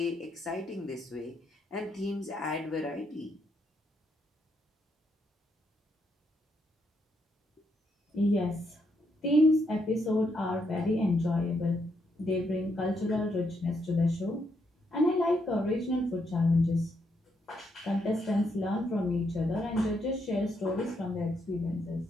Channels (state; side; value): normal; both; correlation 0.77